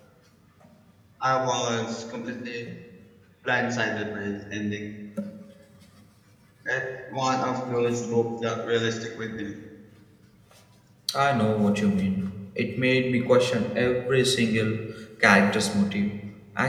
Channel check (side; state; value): both; identical; correlation 1.00